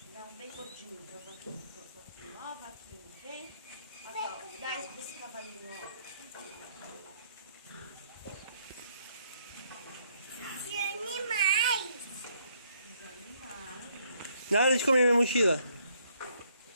Dá um bem gordinho pra vaquinha. Ó, vaquinha, vem. Aqui, ó. Dá esse pra esse cavalinho, ó. de animais. Os animais. Nada de comer minha mochila.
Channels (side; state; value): both; inverted; correlation -0.70